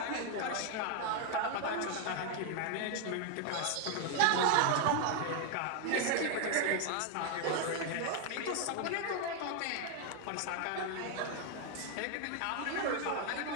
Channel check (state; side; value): different; both; correlation 0.01